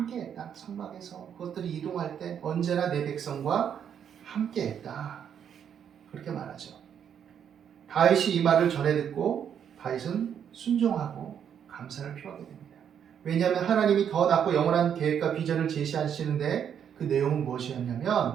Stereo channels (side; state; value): left; quieter; 8.5 dB